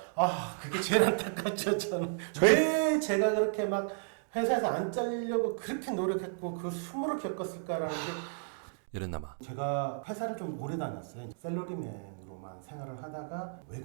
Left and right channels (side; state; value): left; silent; digital silence